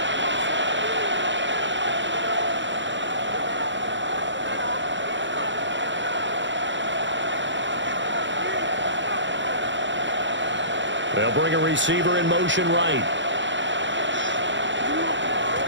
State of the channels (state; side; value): late; left; 0.54 ms